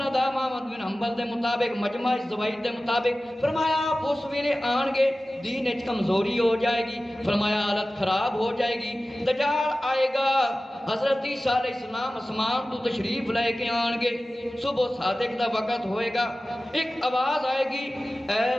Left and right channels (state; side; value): normal; both; correlation 0.96